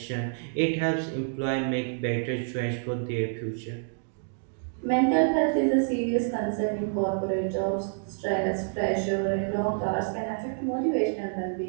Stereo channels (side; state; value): left; silent; digital silence